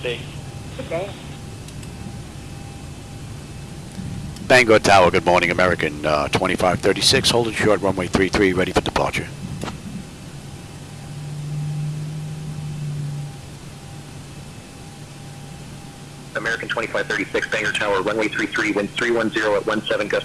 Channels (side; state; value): both; identical; correlation 1.00